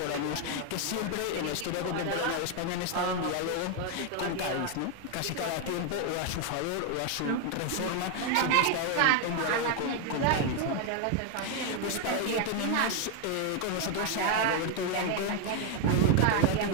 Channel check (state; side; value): different; both; correlation 0.01